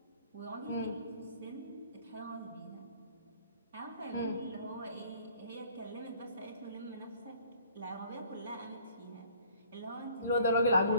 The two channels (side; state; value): both; inverted; correlation -0.55